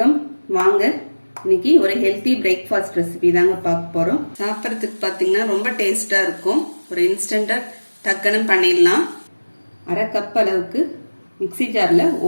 வாங்க இன்னைக்கு ஒரு ஹெல்த்தி பிரேக்ஃபாஸ்ட் ரெசிபி தாங்க பார்க்க போறோம். சாப்பிட்றதுக்கு பார்த்தீங்கன்னா ரொம்ப டேஸ்டா இருக்கும். ஒரு இன்ஸ்டன்டா டக்குன்னு பண்ணிடலாம். அரை கப் அளவுக்கு மிக்சி ஜார்ல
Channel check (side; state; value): both; inverted; correlation -1.00